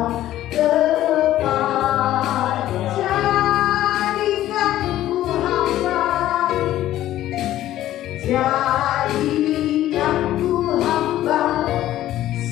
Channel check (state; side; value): quieter; right; 13.6 dB